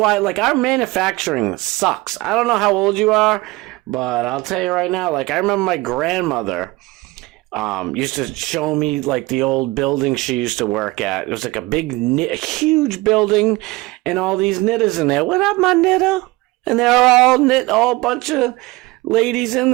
like, our manufacturing sucks. I don't know how old you are, but I'll tell you right now, like, I remember my grandmother used to show me, like, the old building she used to work at. It was like a huge building and all these knitters in there. What up, my knitter? And they're all a bunch of ladies in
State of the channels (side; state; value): left; quieter; 21.5 dB